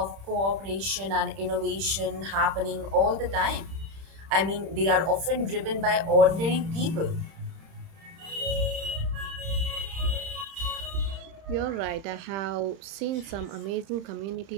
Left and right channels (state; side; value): late; left; 31 ms